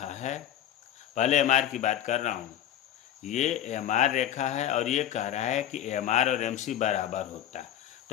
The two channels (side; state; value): right; quieter; 11.4 dB